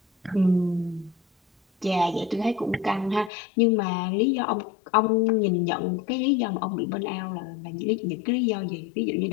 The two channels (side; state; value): right; drops out; at 3.3 s